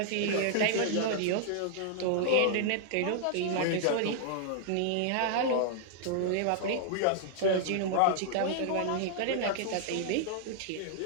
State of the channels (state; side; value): different; both; correlation -0.01